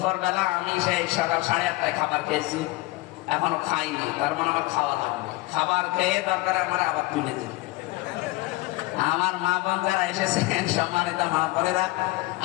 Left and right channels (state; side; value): quieter; right; 20.9 dB